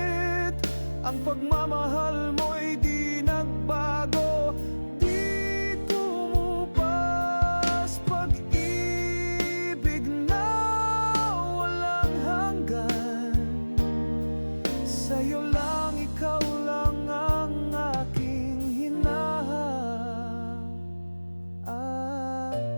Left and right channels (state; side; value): inverted; both; correlation -1.00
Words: ang pagmamahal mo'y di nagbago. Di tumupas, pag-ibig na walang hanggan. Sa'yo lang, ikaw lang ang aking hinahanap.